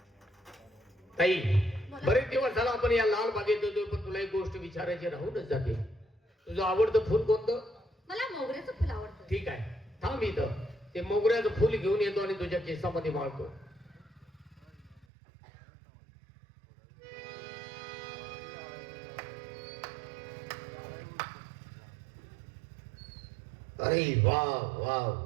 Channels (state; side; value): drops out; left; at 15.1 s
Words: ताई बरेच दिवस झाला आपण या लालबागेत येतोय, पण तुला एक गोष्ट विचारायची राहूनच जाते. तुझं आवडतं फुल कोणतं? मला मोगऱ्याचं फुल आवडतं. ठीक आहे, थांब इथं. ते मोगऱ्याचं फुल घेऊन येतो आणि तुझ्या केसामध्ये माळतो. अरे वा वा